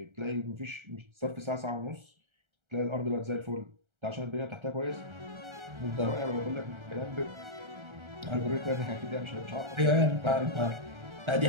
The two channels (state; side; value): late; left; 1.3 ms